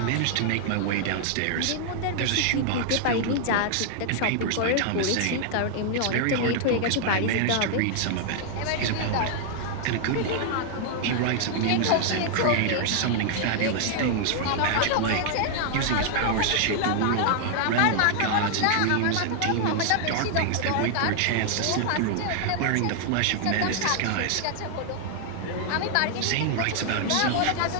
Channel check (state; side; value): different; both; correlation 0.00